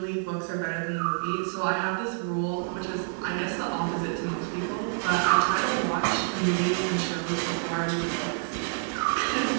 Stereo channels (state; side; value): silent; left; 59 dB below the other